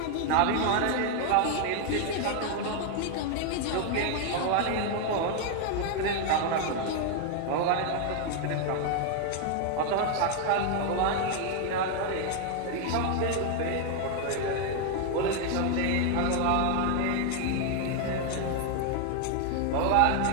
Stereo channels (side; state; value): both; different; correlation 0.01